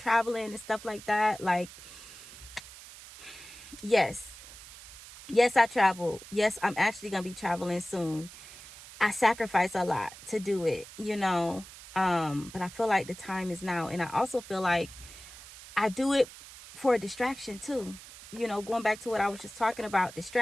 and stuff like that. Like, yes, I travel. Yes, I'm actually gonna be traveling soon. I sacrifice a lot to do it, you know. But I feel like the time is now. And I also feel like I do it for a distraction too. You know, going back to what I was just talking about,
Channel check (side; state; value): right; noise; hiss, 16 dB below the sound